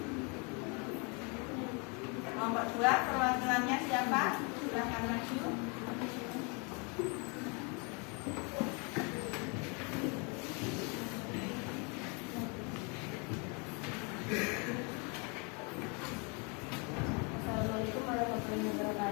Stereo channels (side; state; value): right; quieter; 33.1 dB